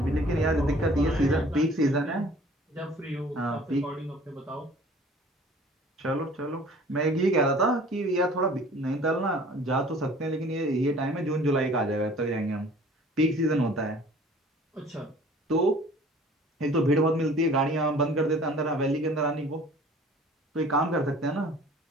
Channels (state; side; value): normal; both; correlation 0.49